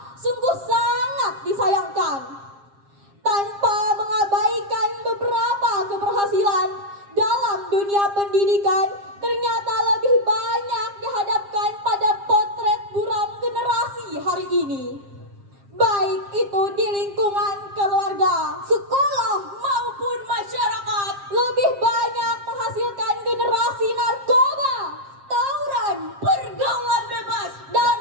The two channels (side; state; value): left; late; 7.4 ms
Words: sungguh sangat disayangkan. Tanpa mengabaikan beberapa keberhasilan dalam dunia pendidikan, ternyata lebih banyak dihadapkan pada potret buram generasi hari ini. Baik itu di lingkungan keluarga, sekolah maupun masyarakat, lebih banyak menghasilkan generasi narkoba, tawuran, pergaulan bebas, dan